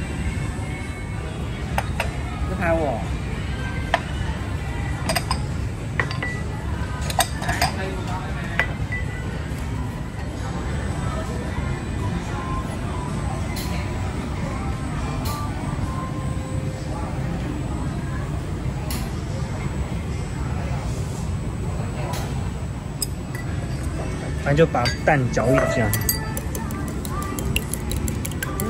拍我。反正就把蛋搅一搅。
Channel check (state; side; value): identical; both; correlation 1.00